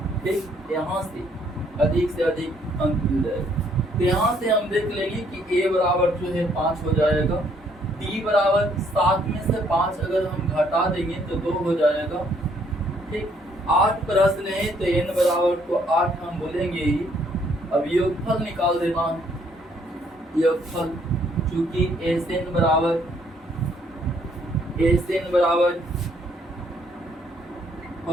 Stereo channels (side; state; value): both; normal; correlation 0.67